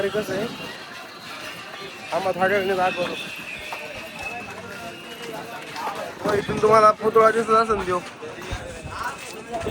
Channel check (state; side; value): identical; both; correlation 1.00